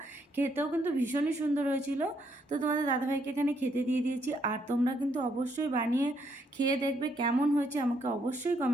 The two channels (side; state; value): both; normal; correlation 0.73